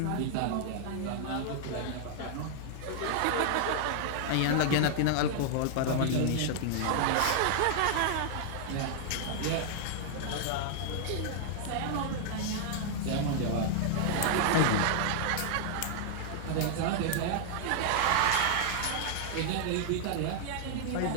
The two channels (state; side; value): different; both; correlation -0.01